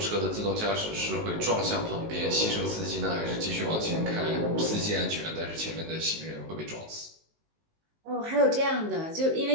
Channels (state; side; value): late; left; 19 ms